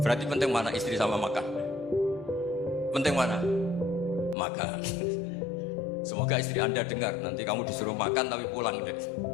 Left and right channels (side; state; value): right; drops out; at 4.4 s